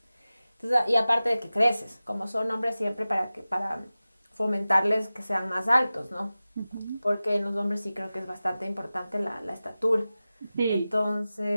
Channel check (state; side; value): inverted; both; correlation -0.96